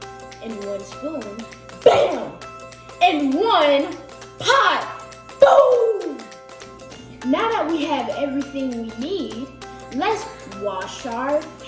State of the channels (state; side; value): identical; both; correlation 1.00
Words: And 1 spoon, bam! And 1 pot, boom! Now that we have everything we need, let's wash our